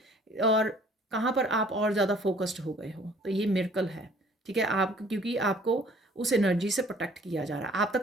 और कहाँ पर आप और ज़्यादा फोकस्ड हो गए हो। तो ये मिरेकल है, ठीक है। आप क्योंकि आपको उस एनर्जी से प्रोटेक्ट किया जा रहा है, आप तक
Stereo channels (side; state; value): both; normal; correlation 0.55